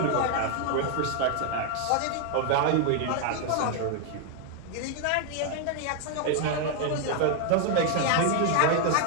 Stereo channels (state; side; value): different; both; correlation 0.00